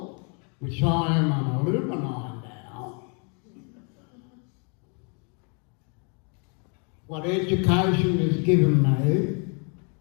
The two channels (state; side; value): quieter; right; 37.1 dB